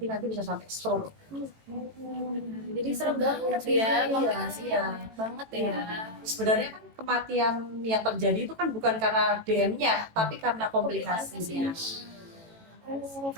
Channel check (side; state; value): left; late; 18 ms